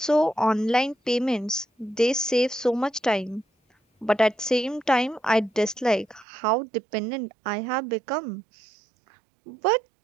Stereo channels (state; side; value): drops out; left; at 6.2 s